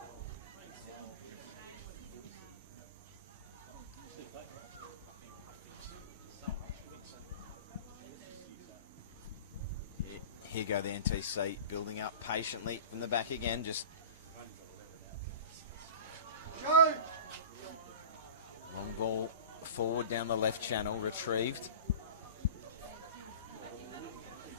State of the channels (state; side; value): inverted; both; correlation -0.37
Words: Here go the NTC, building up patiently from the back again. Just long ball forward down the left channel, retrieved.